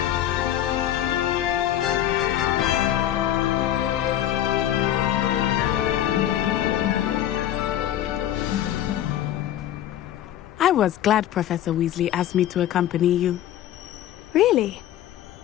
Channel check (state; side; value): quieter; right; 12.0 dB